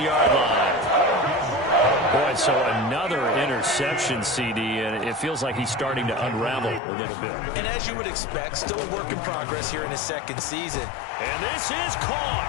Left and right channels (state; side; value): drops out; right; at 6.8 s